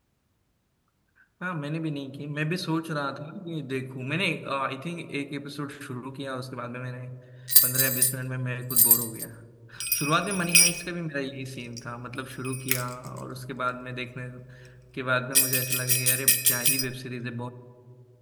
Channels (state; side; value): identical; both; correlation 1.00